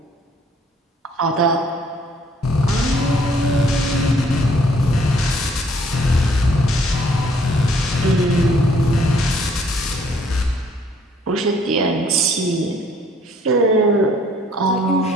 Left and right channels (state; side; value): normal; both; correlation 0.63